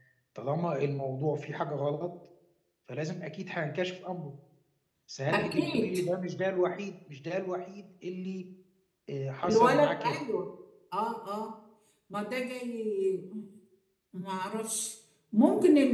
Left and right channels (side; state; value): both; identical; correlation 1.00